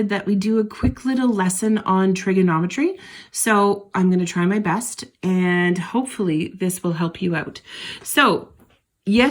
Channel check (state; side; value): identical; both; correlation 1.00